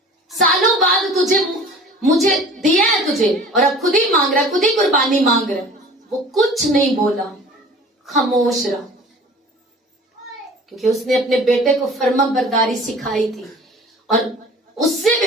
سالوں بعد مجھے دیا ہے تجھے، اور اب خود ہی مانگ رہا، خود ہی قربانی مانگ رہا. وہ کچھ نہیں بولا، خاموش رہا، کیونکہ اس نے اپنے بیٹے کو فرما برداری سکھائی تھی. اور اس سے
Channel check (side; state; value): both; normal; correlation 0.44